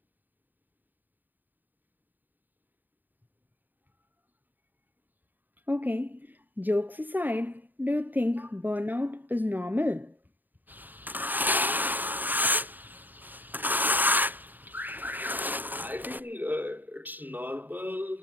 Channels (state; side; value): late; left; 0.088 ms